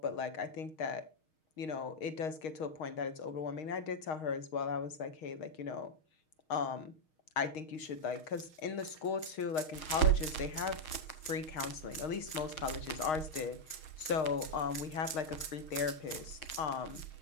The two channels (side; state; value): right; late; 6.4 ms